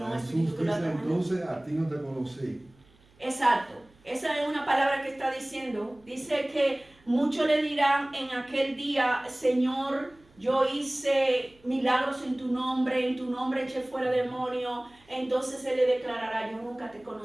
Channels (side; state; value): right; noise; hum, 30 dB below the sound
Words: un Jesús espíritu que lo dice, atrajo. entonces a ti no te conocí. Exacto. Esa es una palabra que está diciendo. Dice que muchos le dirán en aquel día, Señor, yo hice milagros en tu nombre eché fuera demonios. Entonces Él le declarará, yo nunca te